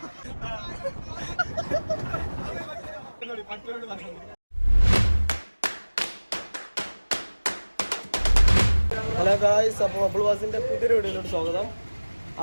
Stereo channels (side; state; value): both; inverted; correlation -1.00